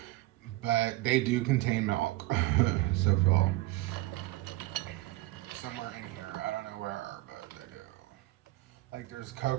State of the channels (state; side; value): quieter; left; 18.3 dB